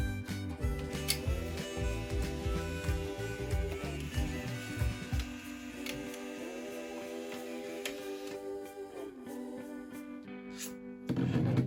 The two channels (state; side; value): identical; both; correlation 1.00